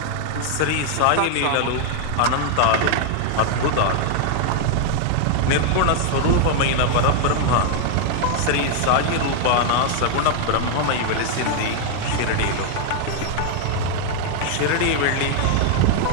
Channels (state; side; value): different; both; correlation 0.00